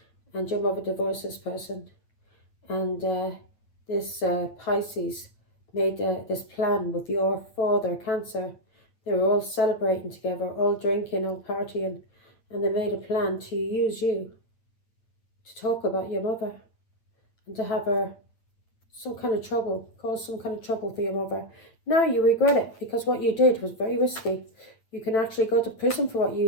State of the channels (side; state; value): right; late; 9.0 ms